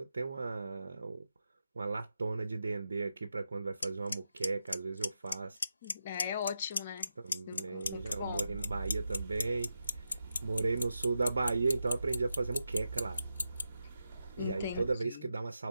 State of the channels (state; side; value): inverted; both; correlation -0.88